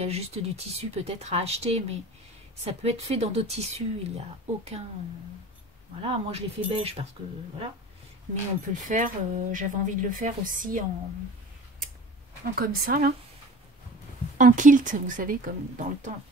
a juste du tissu peut-être à acheter, mais ça peut être fait dans d'autres tissus. Il n'y a aucun... Voilà, moi je l'ai fait beige parce que... Voilà. Mais on peut le faire. J'avais envie de le faire aussi en comme ça, là. En kilt, vous savez, comme dans le temps.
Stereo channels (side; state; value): both; normal; correlation 0.40